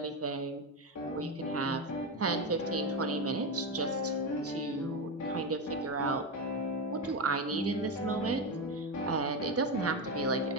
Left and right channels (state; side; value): normal; both; correlation 0.14